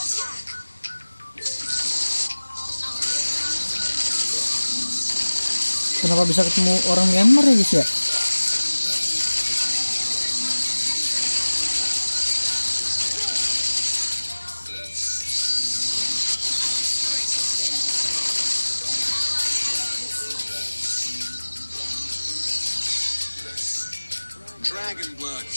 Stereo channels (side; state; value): both; inverted; correlation -1.00